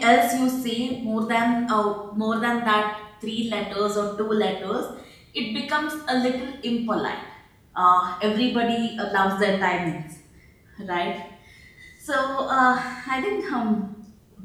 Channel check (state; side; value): identical; both; correlation 1.00